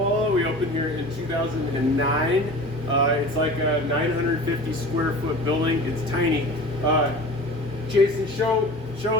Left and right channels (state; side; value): normal; both; correlation 0.38